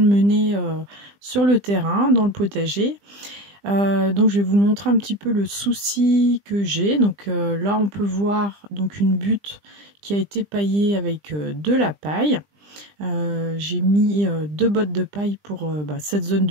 mener sur le terrain, dans le potager. Donc je vais vous montrer un petit peu le souci que j'ai. Donc là on peut voir donc une butte qui a été paillée avec de la paille. J'ai mis 2 bottes de paille pour cette zone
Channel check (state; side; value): late; left; 20 ms